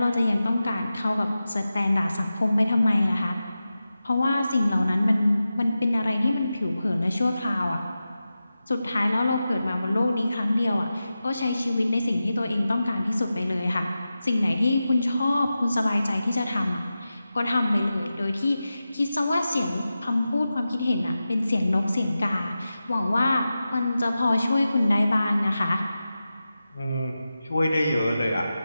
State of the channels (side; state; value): both; inverted; correlation -0.93